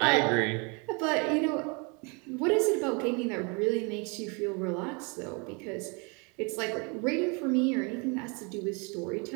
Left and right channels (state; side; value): quieter; left; 32.3 dB